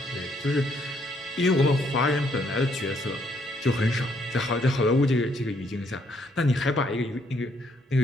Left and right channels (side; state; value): both; normal; correlation 0.70